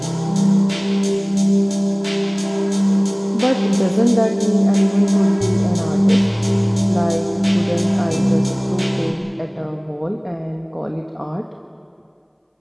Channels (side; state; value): both; identical; correlation 1.00